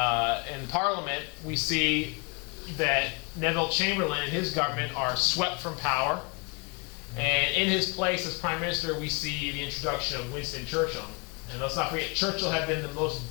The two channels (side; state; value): right; quieter; 32.0 dB